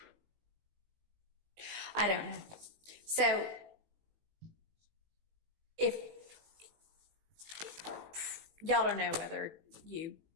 I don't know. So if y'all don't know whether you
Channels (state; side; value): late; left; 18 ms